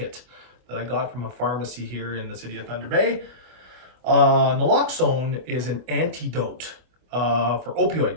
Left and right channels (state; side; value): late; left; 25 ms